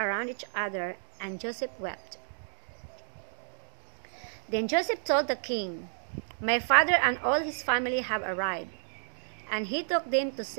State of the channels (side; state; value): left; silent; digital silence